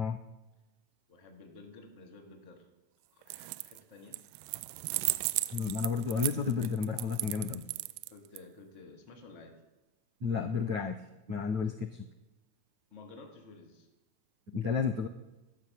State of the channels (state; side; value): late; left; 9.2 ms